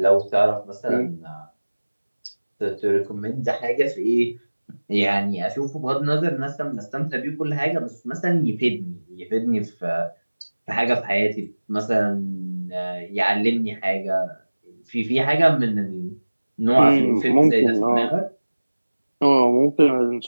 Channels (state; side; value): inverted; both; correlation -1.00